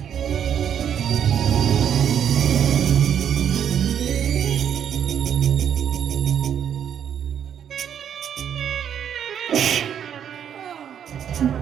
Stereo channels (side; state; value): left; quieter; 9.0 dB